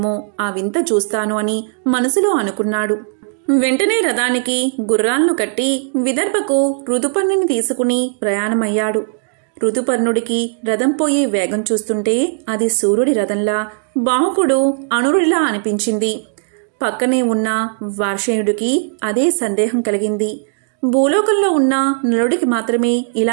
ఆ వింత చూస్తాను అని మనసులో అనుకున్నాడు. వెంటనే రథానికి గుర్రాలను కట్టి విదర్భకు ఋతుపర్ణుని తీసుకుని ప్రయాణమయ్యాడు. ఋతుపర్ణుడికి రథం పోయే వేగం చూస్తుంటే అది సూర్యుడి రథంలా, బాహుకుడు అనురుడిలా అనిపించింది. పక్కనే ఉన్న వార్షేయుడికి అదే సందేహం కలిగింది. భూలోకంలో ఉన్న నలుడికి మాత్రమే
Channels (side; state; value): left; silent; digital silence